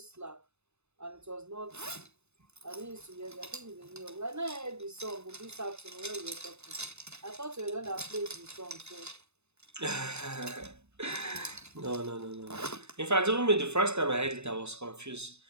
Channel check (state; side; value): late; left; 0.81 ms